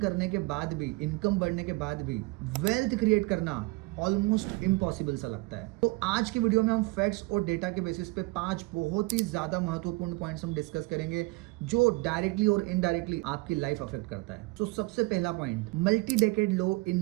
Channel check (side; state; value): left; quieter; 24.3 dB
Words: करने के बाद भी, इनकम बढ़ने के बाद भी वेल्थ क्रिएट करना ऑलमोस्ट इम्पॉसिबल सा लगता है। तो आज की वीडियो में हम फैक्ट्स और डेटा के बेसिस पे 5 बहुत ही ज्यादा महत्वपूर्ण पॉइंट्स हम डिस्कस करेंगे जो डायरेक्टली और इनडायरेक्टली आपकी लाइफ अफेक्ट करता है। तो सबसे पहला पॉइंट, मल्टी डेकेड लो इन